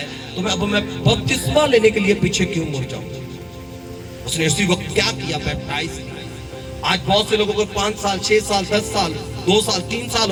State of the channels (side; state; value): both; identical; correlation 1.00